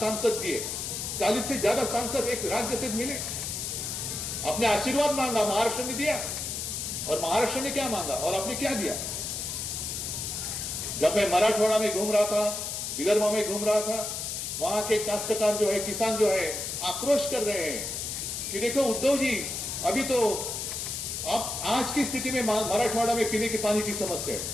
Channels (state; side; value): noise; left; hiss, 4 dB below the sound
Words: दिए, 40 से ज्यादा सांसद एक राज्य से मिले। आपने आशीर्वाद मांगा, महाराष्ट्र ने दिया, और महाराष्ट्र ने क्या मांगा और आपने क्या दिया? जब मैं मराठवाड़ा में घूम रहा था, विदर्भ में घूम रहा था, वहां के काश्तकार जो है, किसान जो है, आक्रोश कर रहे हैं कि देखो उद्धव जी, अभी तो आप आज की स्थिति में मराठवाड़ा में पीने के पानी की समस्या है।